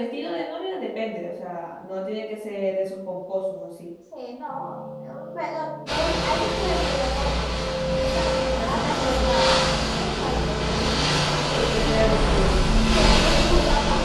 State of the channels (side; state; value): both; identical; correlation 1.00